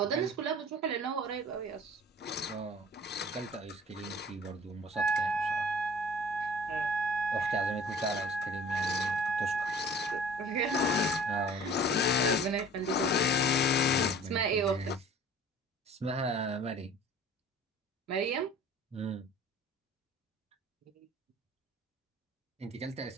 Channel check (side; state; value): both; normal; correlation 0.47